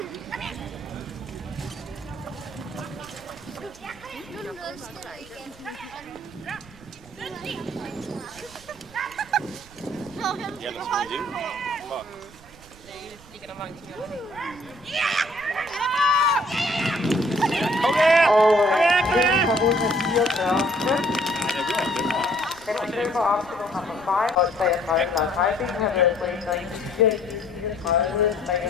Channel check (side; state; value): right; noise; rumble, 22 dB below the sound